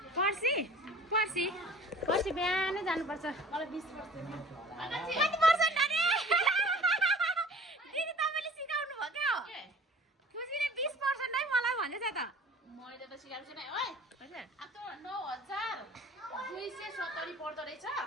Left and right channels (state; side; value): normal; both; correlation 0.46